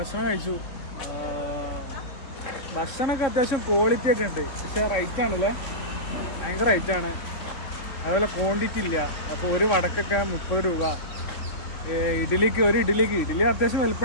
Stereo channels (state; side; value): late; right; 4.0 ms